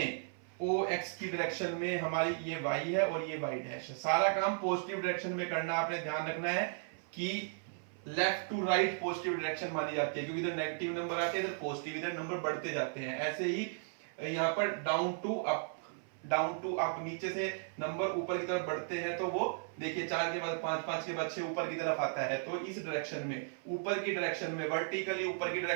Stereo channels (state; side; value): silent; left; 54 dB below the other